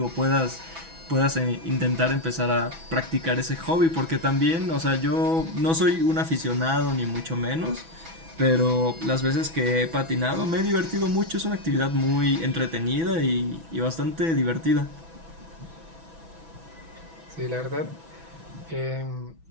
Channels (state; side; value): late; left; 6.1 ms